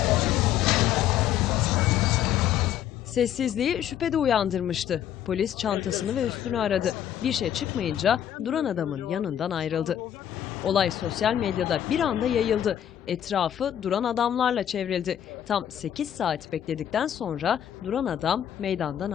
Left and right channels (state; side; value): quieter; right; 10.3 dB